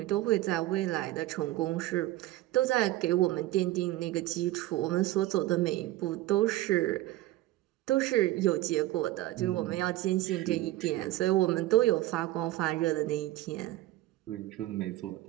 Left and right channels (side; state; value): left; quieter; 16.0 dB